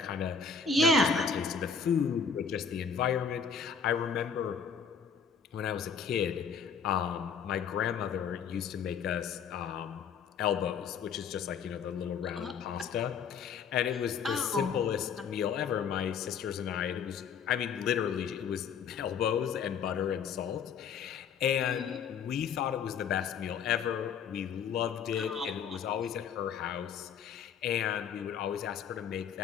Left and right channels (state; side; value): quieter; right; 6.5 dB